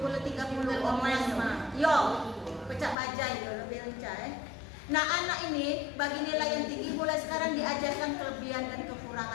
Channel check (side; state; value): right; drops out; at 3.0 s